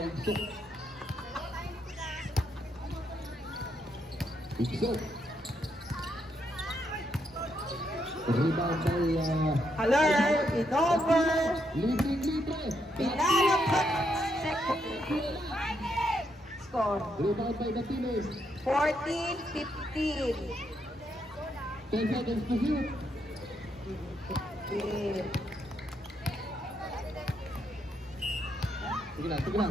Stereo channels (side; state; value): both; normal; correlation 0.78